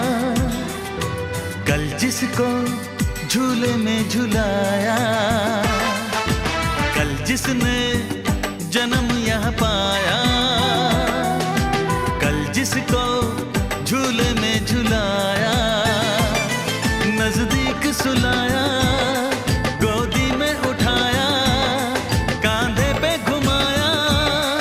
कल जिसको झूले में झुलाया, कल जिसने जन्म यहाँ पाया, कल जिसको झूले में झुलाया, नजदीक सुलाया, गोदी में उठाया, कांधे पे घुमाया,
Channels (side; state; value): both; identical; correlation 1.00